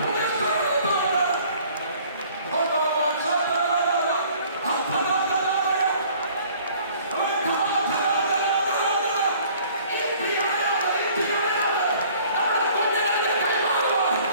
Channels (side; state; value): both; inverted; correlation -0.54